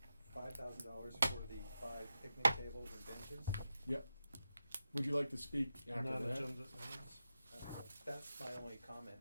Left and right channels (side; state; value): both; inverted; correlation -0.89